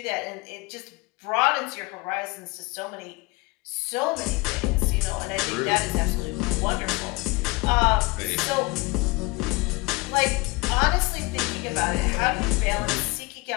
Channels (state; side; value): quieter; right; 24.9 dB